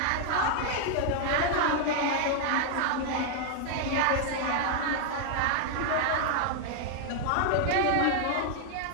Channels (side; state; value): both; different; correlation 0.00